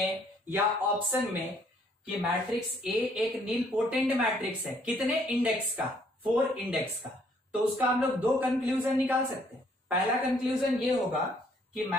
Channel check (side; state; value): both; normal; correlation 0.65